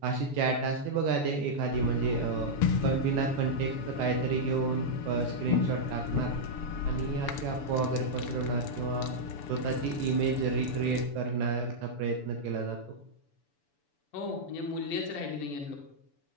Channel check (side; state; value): right; late; 6.9 ms